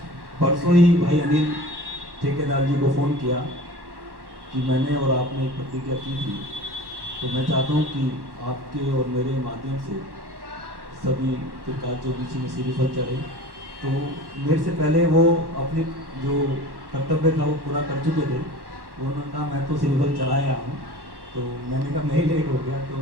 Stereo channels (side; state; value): left; late; 1.1 ms